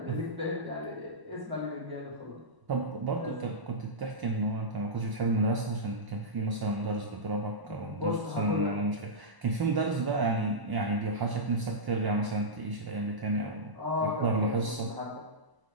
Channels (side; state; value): left; late; 1.0 ms